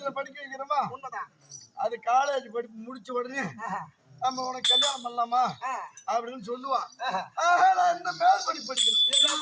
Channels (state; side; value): identical; both; correlation 1.00